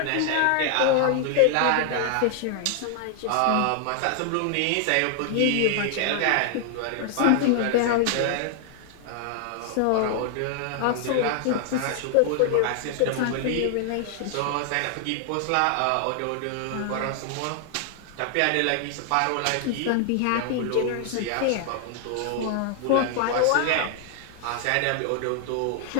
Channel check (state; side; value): different; both; correlation 0.00